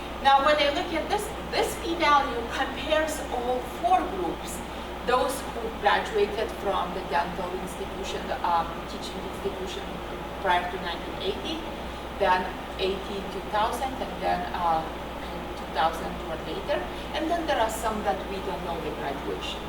Now, when I look at this p-value compares all 4 groups. Those who graduated from the dental institution, teaching institution prior to 1980, then 2000, and then 2000 or later. And then there are some that we don't know the graduation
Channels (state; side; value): identical; both; correlation 1.00